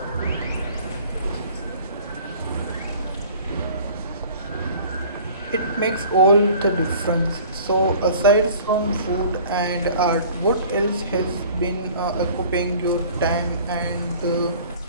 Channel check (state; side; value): inverted; both; correlation -0.47